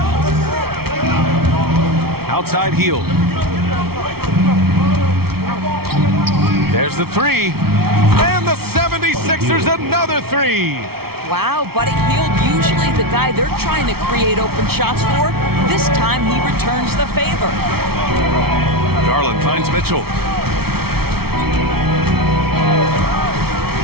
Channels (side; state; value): left; late; 0.95 ms